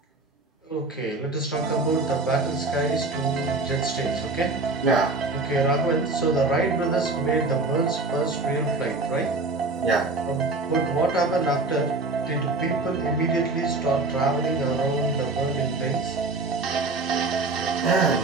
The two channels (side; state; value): left; quieter; 3.4 dB